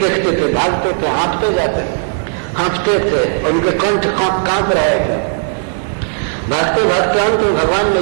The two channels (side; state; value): left; silent; digital silence